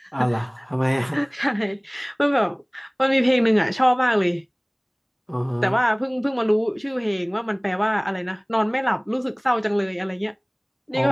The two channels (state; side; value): identical; both; correlation 1.00